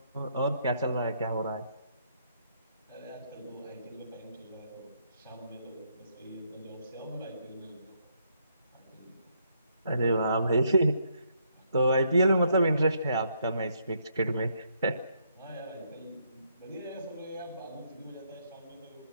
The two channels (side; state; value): both; inverted; correlation -0.73